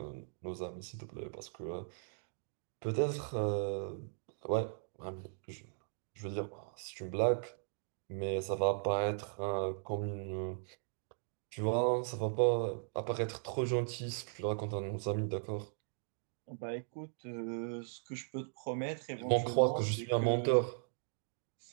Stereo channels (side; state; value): left; silent; digital silence